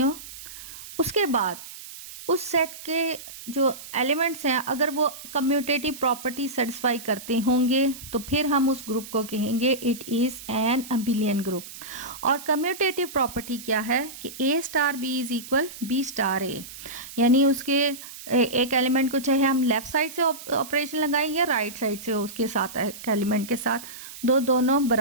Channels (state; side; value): noise; right; hiss, 14 dB below the sound